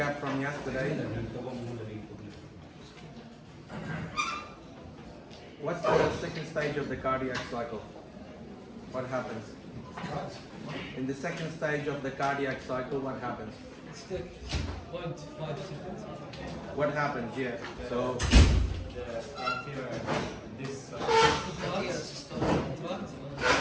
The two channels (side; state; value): both; identical; correlation 1.00